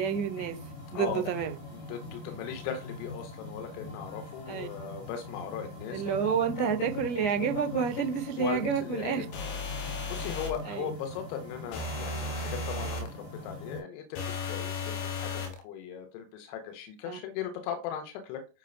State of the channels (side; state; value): right; late; 25 ms